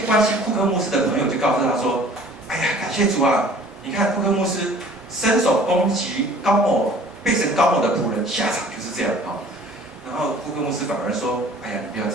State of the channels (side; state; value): both; normal; correlation 0.50